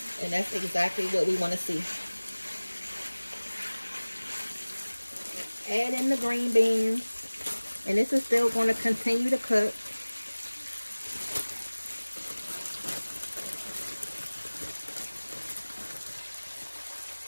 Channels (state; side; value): inverted; both; correlation -1.00